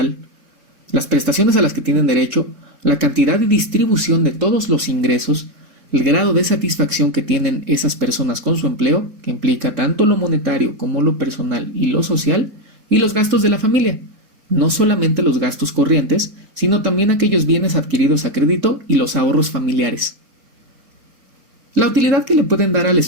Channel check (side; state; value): left; late; 4.4 ms